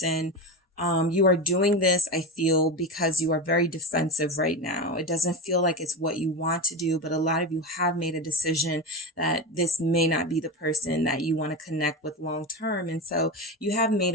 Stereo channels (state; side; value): normal; both; correlation 0.20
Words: You are doing this, I feel, because you are very defensive right now. It doesn't feel like it's what you want to do, but a lot of you have made a decision that this may not be the person that you want to connect with long term. And so you have made